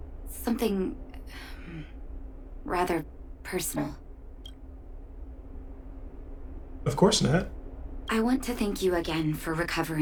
Something rather personal. Of course, Nat. I want to thank you again for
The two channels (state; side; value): identical; both; correlation 1.00